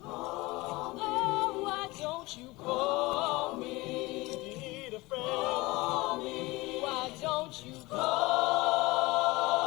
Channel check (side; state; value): right; quieter; 21.9 dB